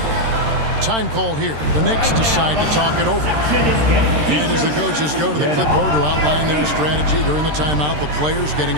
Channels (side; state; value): left; late; 13 ms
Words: Time called here. The Knicks decide to talk it over. And as the coaches go to the clipboard to outline their strategy during the timeout, the players getting